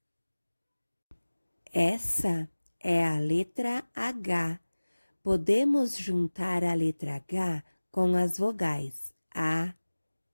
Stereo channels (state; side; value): inverted; both; correlation -1.00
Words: Essa é a letra H. Podemos juntar a letra H com as vogais A,